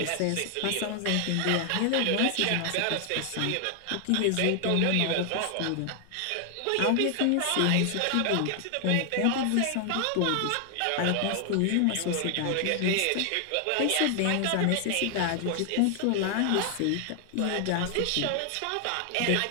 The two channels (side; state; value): both; different; correlation 0.00